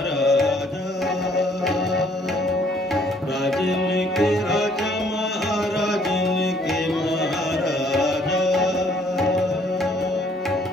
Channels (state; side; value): normal; both; correlation 0.63